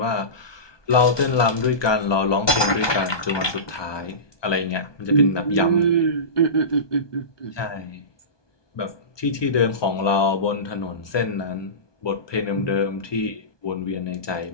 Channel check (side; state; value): right; late; 1.2 ms